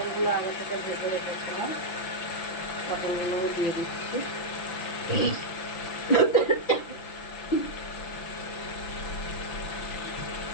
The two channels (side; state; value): right; late; 5.9 ms